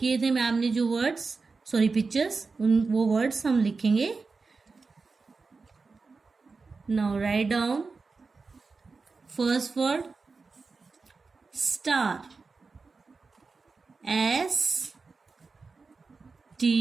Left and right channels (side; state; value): left; quieter; 4.3 dB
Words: थे मैम ने जो वर्ड्स, सॉरी पिक्चर्स, वो वर्ड्स हम लिखेंगे. Now write down first word star. S T